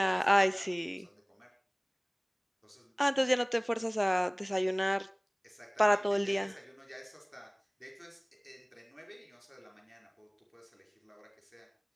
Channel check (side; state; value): both; identical; correlation 1.00